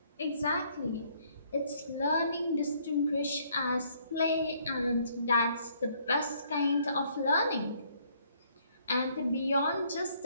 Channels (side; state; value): both; inverted; correlation -0.66